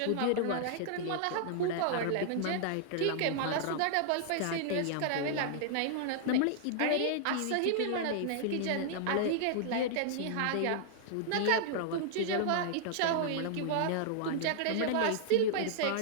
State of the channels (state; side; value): different; both; correlation -0.01